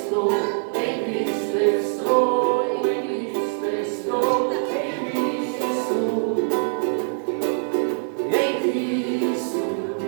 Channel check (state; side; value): silent; left; 63 dB below the other